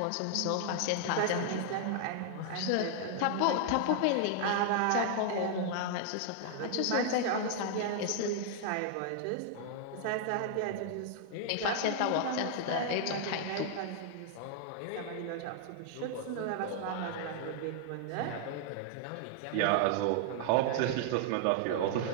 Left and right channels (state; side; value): different; both; correlation 0.00